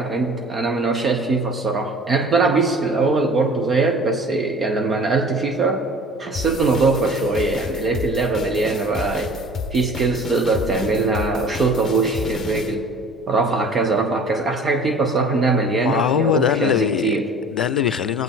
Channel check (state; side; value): normal; both; correlation 0.45